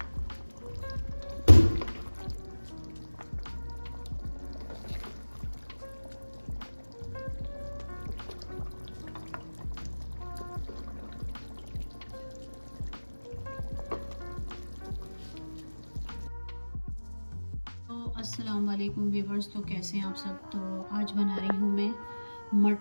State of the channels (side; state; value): both; inverted; correlation -1.00